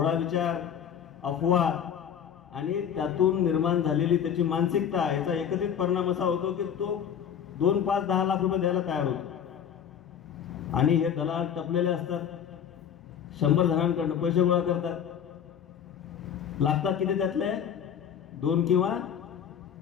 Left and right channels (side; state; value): right; quieter; 8.5 dB